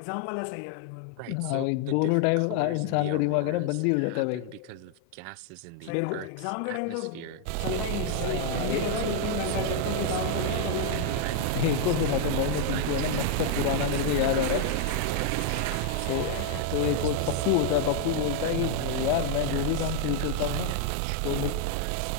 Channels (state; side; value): different; both; correlation 0.00